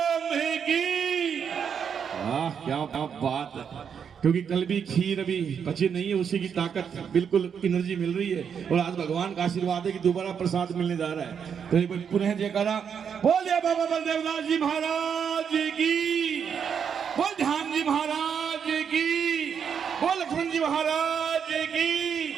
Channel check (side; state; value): left; quieter; 7.3 dB